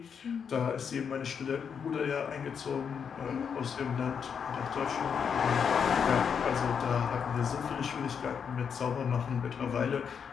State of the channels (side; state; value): right; quieter; 6.9 dB